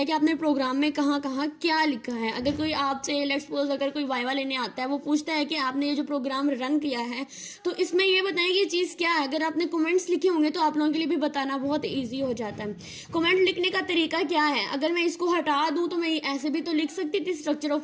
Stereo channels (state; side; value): identical; both; correlation 1.00